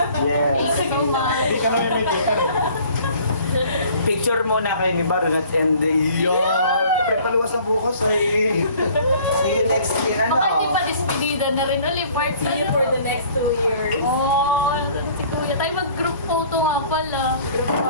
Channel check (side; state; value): both; inverted; correlation -0.52